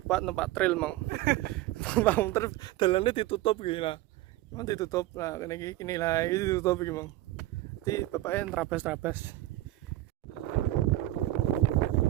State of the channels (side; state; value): left; quieter; 16.3 dB